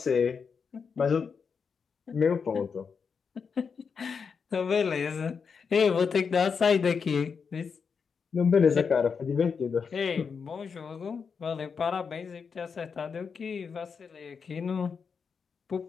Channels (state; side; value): quieter; right; 5.9 dB